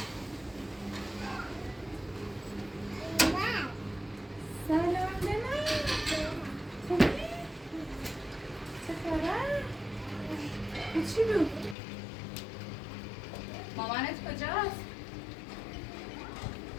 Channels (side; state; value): right; drops out; at 11.8 s